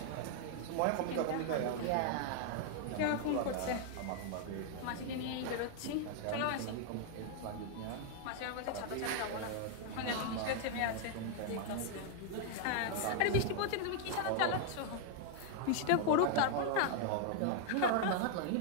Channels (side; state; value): both; different; correlation 0.00